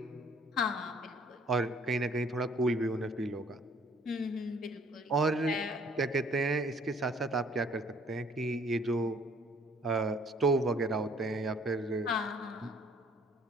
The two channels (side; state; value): both; normal; correlation 0.59